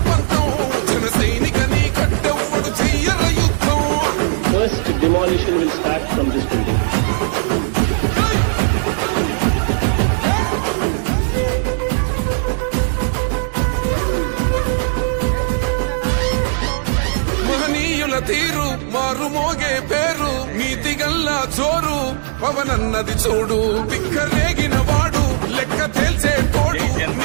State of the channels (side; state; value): left; silent; digital silence